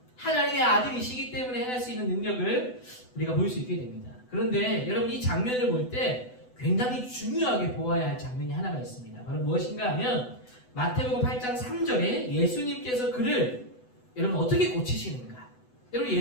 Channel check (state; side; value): late; right; 8.0 ms